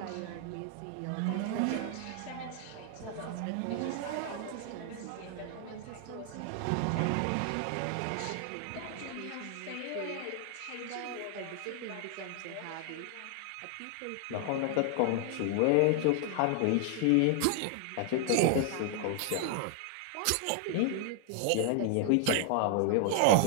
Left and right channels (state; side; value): different; both; correlation 0.00